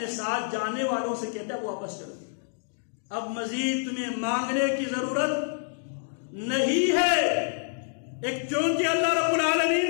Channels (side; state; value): right; silent; digital silence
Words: ساتھ جانے والوں سے کہتے ہیں واپس چلو, اب مزید تمہیں مانگنے کی ضرورت نہیں ہے. ایک چونکہ اللہ رب